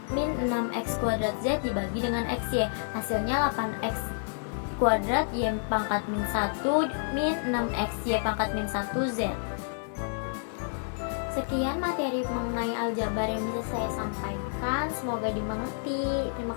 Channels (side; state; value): right; silent; 58 dB below the other